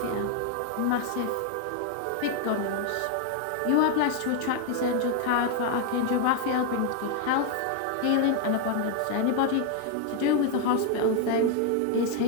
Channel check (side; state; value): both; different; correlation 0.00